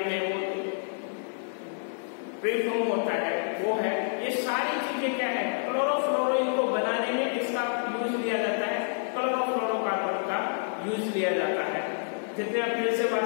वो परफ्यूम होता है वो है, ये सारी चीजें क्या है, क्लोरोफ्लोरो, इनको बनाने में इसका यूज लिया जाता है, क्लोरोफ्लोरोकार्बन का यूज लिया जाता है। जितने अपने से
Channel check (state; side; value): silent; right; digital silence